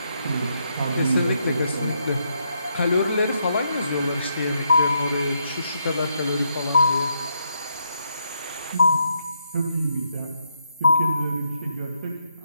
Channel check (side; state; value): both; inverted; correlation -0.79